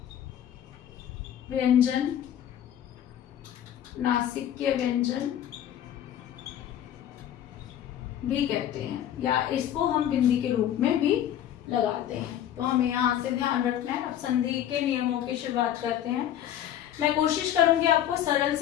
व्यंजन, नासिक्य व्यंजन भी कहते हैं, या इसको हम बिंदी के रूप में भी लगाते हैं। तो हमें यहाँ से ध्यान रखना है। अब संधि के नियमों की शुरुआत करते हैं। मैं कोशिश करूंगी आपको सरल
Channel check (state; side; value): quieter; right; 10.9 dB